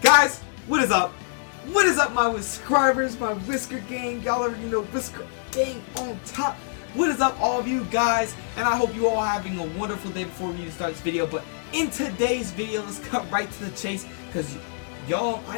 Guys, what is up? What is up, my subscribers, my Whisker Gang? Y'all already know Whisker Gang on top. What is up, all of you guys? And I hope you all having a wonderful day before we start this video. But in today's video, let's cut right to the chase, because y'all, I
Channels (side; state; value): right; silent; digital silence